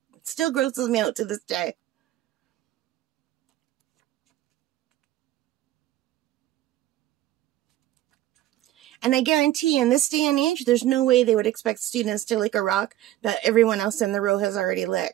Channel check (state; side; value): quieter; left; 14.1 dB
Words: still grosses me out to this day. And I guarantee in this day and age, there's no way they would expect students to lick a rock that everyone else in the row has already